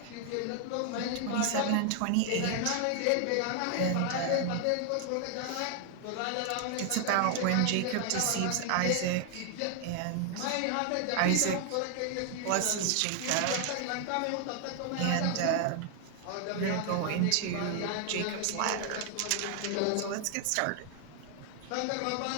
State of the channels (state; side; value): different; both; correlation 0.00